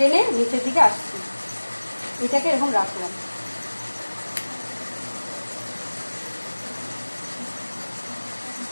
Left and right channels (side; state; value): both; inverted; correlation -1.00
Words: নিচের দিকে আসছি, এটাকে এরকম রাখলাম।